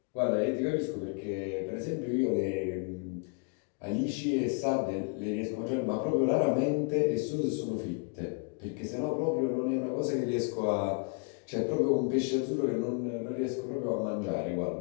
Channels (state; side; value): quieter; right; 39.6 dB